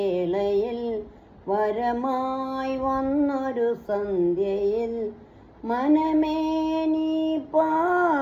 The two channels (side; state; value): both; identical; correlation 1.00